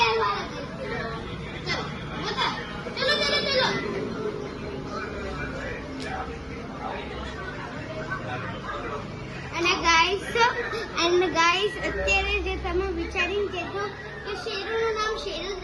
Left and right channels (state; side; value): identical; both; correlation 1.00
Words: અને ગાઈસ અત્યારે જે તમે વિચારીને કહેજો કે શેરુનું નામ શેરુ જ